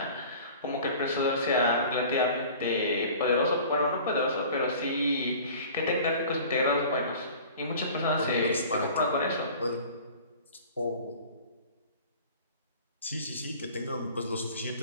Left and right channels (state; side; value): inverted; both; correlation -0.43